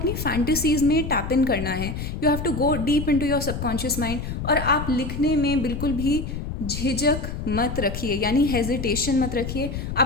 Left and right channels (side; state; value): left; noise; rumble, 5 dB below the sound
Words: फैंटेसीज में टैप इन करना है। You have to go deep into your subconscious mind. और आप लिखने में बिल्कुल भी झिझक मत रखिए, यानी हेजिटेशन मत रखिए।